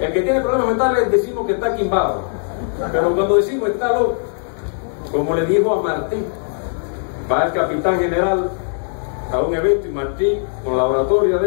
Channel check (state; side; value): silent; right; digital silence